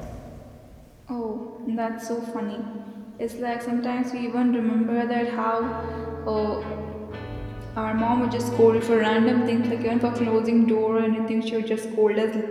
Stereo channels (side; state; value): both; identical; correlation 1.00